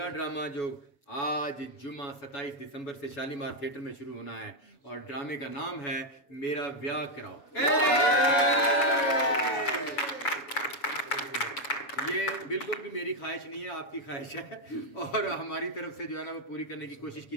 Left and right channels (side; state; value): right; late; 6.9 ms